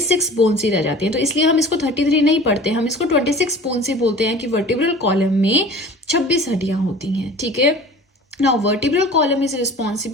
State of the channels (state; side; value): normal; both; correlation 0.42